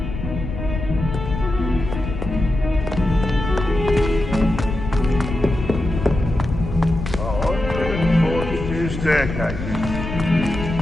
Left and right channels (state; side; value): noise; left; rumble, 6 dB below the sound